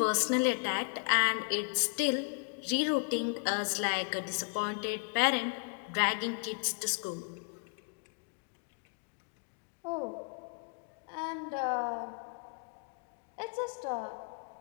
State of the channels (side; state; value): right; quieter; 39.7 dB